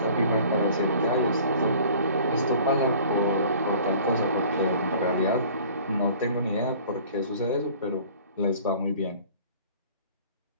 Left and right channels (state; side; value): inverted; both; correlation -0.48